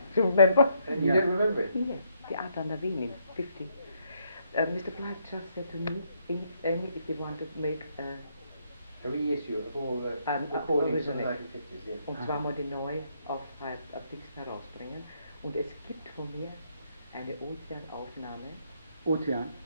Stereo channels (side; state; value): both; inverted; correlation -0.73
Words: Do you remember? And you don't remember it? Yes. The Art on the Wien in 50. Mr. Blyth just said to me, if you want to make A reissue of all the recordings from the 1950s, yes. und zwar mal die neu auf Dings herausbringen. Und es gibt von mir eine Ozeanaufnahme. Ozean.